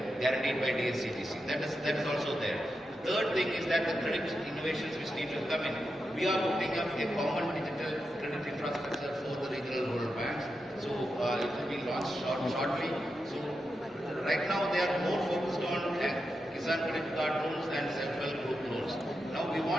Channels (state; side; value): normal; both; correlation 0.88